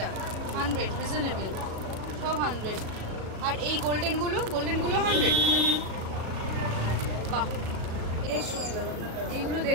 100 রিজনেবল, সব 100। আর এই গোল্ডেনগুলো 100? বাহ। 150। এইগুলো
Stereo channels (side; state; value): left; late; 37 ms